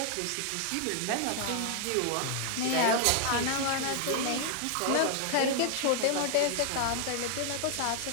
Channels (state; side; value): different; both; correlation 0.00